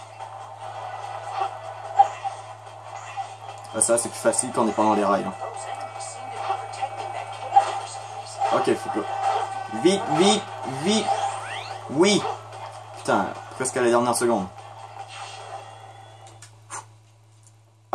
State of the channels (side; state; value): both; identical; correlation 1.00